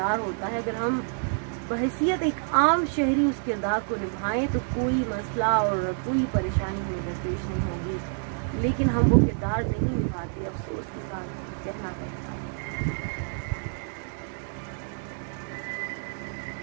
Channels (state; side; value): silent; left; 59 dB below the other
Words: ہوتا ہے, اگر ہم बहैसियत एक आम शहरी उस किरदार को निभाएं तो कोई मसला और कोई परेशानी हमें दरपेश नहीं होगी, लेकिन हम वो किरदार नहीं निभाते, अफसोस के साथ कहना पड़ता है।